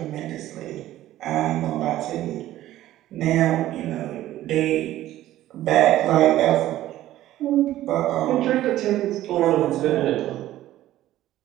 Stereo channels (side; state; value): left; quieter; 14.2 dB